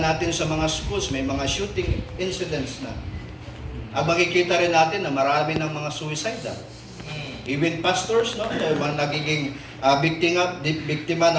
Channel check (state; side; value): identical; both; correlation 1.00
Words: sa mga schools, may mga shooting incidents na. Ang makikita rin natin na marami ng mga suicidal. Even pastors, no, mga nagiging biktima